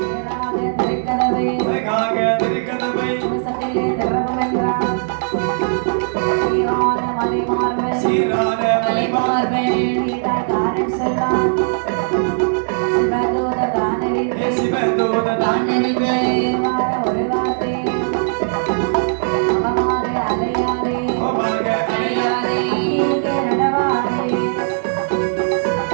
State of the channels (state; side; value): silent; left; digital silence